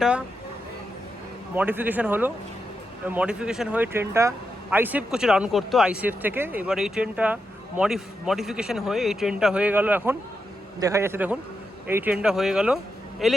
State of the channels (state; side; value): normal; both; correlation 0.86